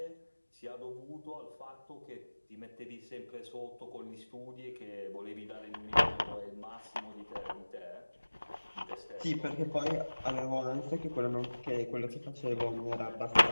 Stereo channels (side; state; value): both; inverted; correlation -1.00